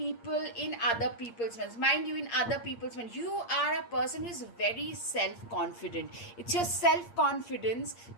in other people's minds. Mind you, in other people's minds, you are a person who is very self-confident. It's your self-confidence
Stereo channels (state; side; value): late; right; 8.6 ms